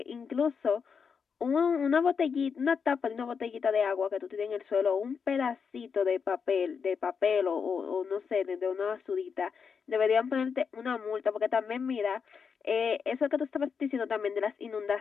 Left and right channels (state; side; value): quieter; right; 6.1 dB